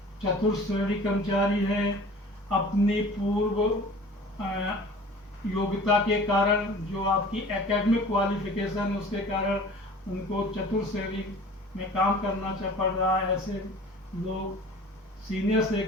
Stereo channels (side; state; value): both; normal; correlation 0.44